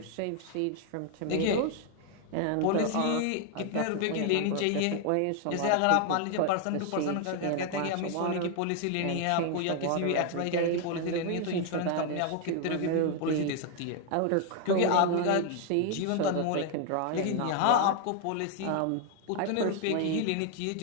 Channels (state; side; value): different; both; correlation 0.00